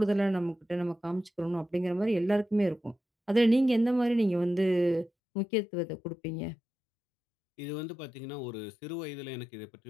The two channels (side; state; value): right; drops out; at 5.1 s